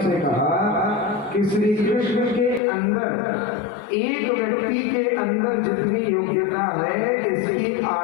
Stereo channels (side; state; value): right; drops out; at 2.6 s